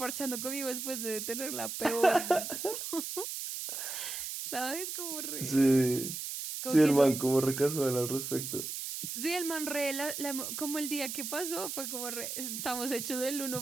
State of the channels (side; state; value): right; noise; hiss, 5 dB below the sound